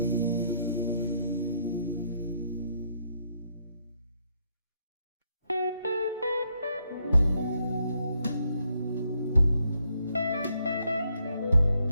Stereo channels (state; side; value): inverted; both; correlation -0.75